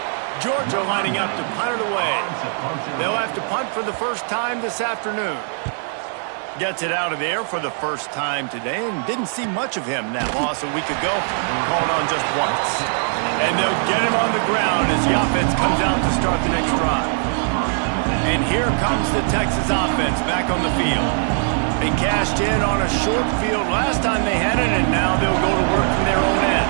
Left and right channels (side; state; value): left; silent; 57 dB below the other